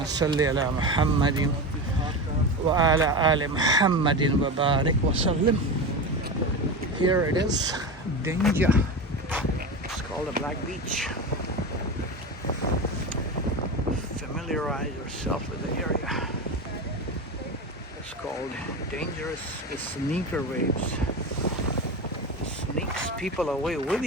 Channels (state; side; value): normal; both; correlation 0.23